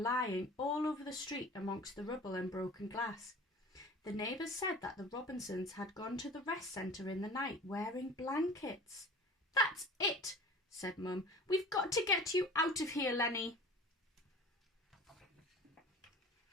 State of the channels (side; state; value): both; normal; correlation 0.42